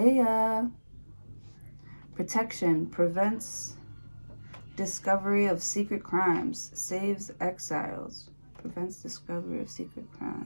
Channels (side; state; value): both; inverted; correlation -1.00